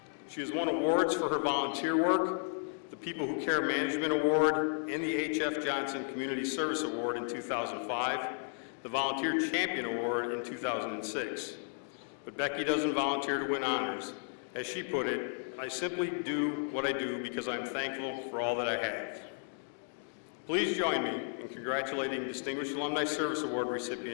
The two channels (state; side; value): silent; right; 55 dB below the other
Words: She has won awards for her volunteer work, the People Who Care Management Award, and the H.F. Johnson Community Service Award in 2005, the Volunteer Champion Award in 2006. But Becky doesn't volunteer to win honors. As she put it, I simply do what I do because I'm thankful for all that I have. Please join me in congratulating Distinguished Alumni Service Award